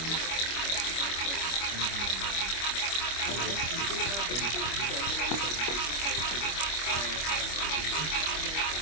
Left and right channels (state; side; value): late; right; 25 ms